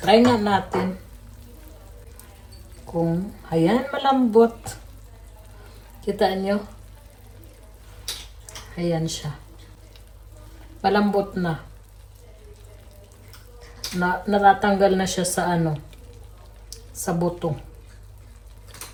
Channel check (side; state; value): both; identical; correlation 1.00